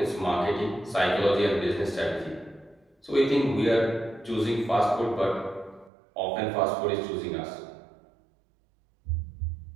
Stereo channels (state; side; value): drops out; left; at 5.9 s